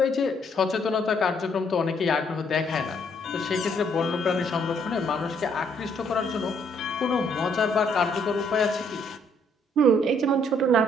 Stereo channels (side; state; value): both; normal; correlation 0.68